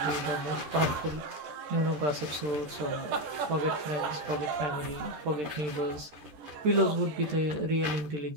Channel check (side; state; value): left; late; 13 ms